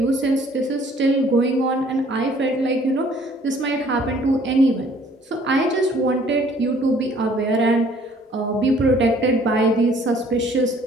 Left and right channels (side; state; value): both; normal; correlation 0.57